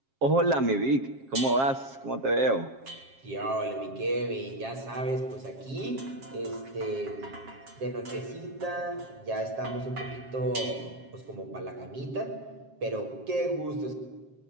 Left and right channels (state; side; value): late; left; 7.4 ms